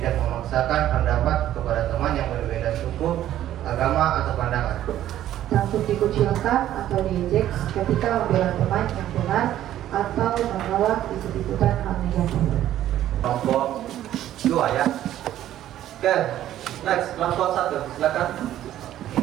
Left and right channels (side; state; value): left; quieter; 12.4 dB